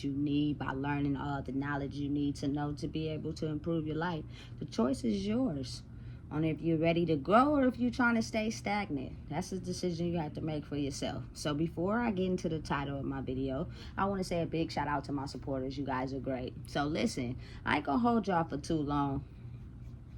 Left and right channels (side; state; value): both; identical; correlation 1.00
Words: you need by learning all the knowledge you need to know to be able to improve your life. The choice is yours on if you're ready to grow or if you're trying to stay stagnant. That's a decision you have to make for yourself. So before I get into the title of my video, I want to say a big shout out to my supporters. You guys are great. So listen, I ain't gonna hold y'all for too long.